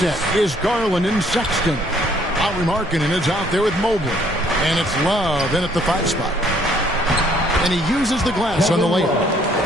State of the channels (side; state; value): both; normal; correlation 0.63